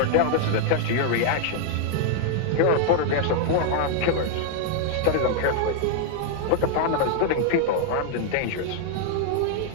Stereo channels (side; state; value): both; different; correlation 0.00